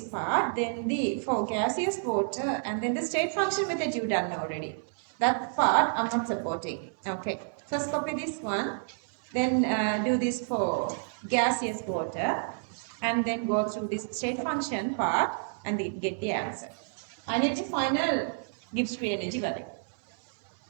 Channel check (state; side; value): silent; left; 58 dB below the other